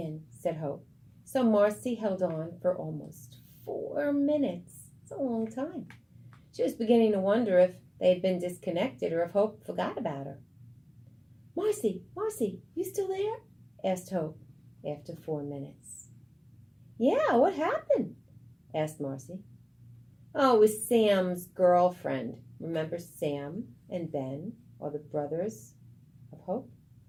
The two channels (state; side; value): identical; both; correlation 1.00